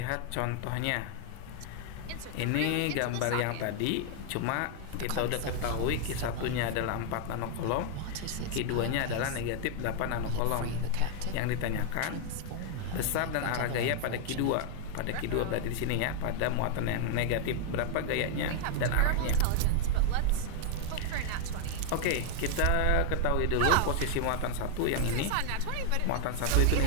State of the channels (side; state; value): both; different; correlation 0.00